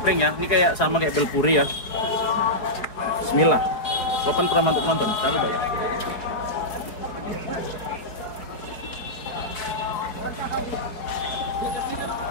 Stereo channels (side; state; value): right; late; 4.7 ms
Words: ya, ini kayak sama kayak belpuri ya. Bismillah. Sopan pernah untuk nonton, jangan lupa ya.